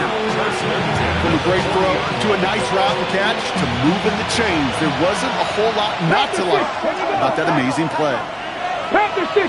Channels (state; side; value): identical; both; correlation 1.00